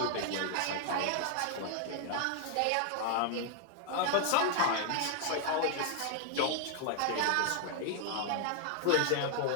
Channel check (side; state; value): both; different; correlation 0.00